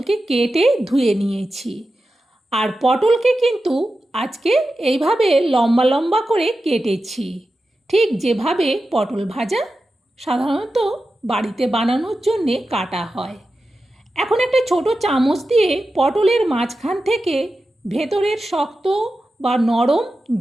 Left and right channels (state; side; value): normal; both; correlation 0.92